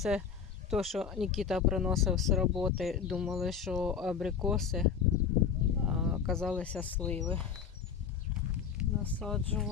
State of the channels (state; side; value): quieter; right; 6.9 dB